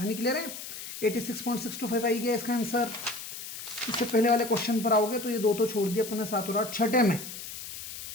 क्लियर है? 86.625 आई गया इसका आंसर। इससे पहले वाले क्वेश्चन पर आओगे तो ये 2 तो छोड़ दिया अपन ने, 7 और 8। छठे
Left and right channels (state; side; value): noise; left; hiss, 10 dB below the sound